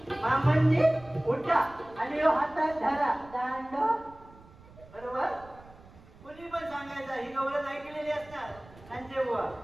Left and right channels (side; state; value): right; noise; rumble, 22 dB below the sound